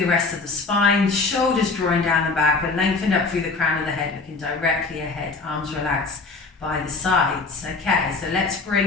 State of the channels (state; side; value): quieter; right; 4.0 dB